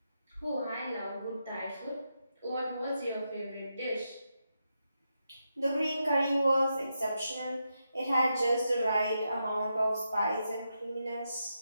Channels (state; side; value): inverted; both; correlation -0.85